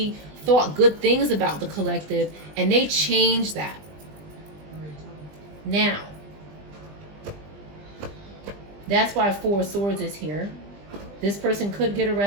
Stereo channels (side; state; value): left; late; 20 ms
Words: thought good things about the collective, and they changed that. Now, that's why Four of Swords is here. This person could get